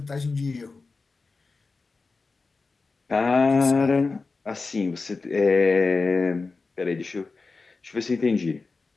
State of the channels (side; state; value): right; quieter; 4.1 dB